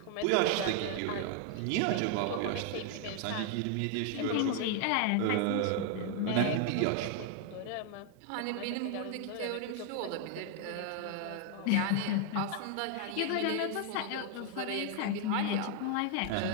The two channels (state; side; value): different; both; correlation 0.00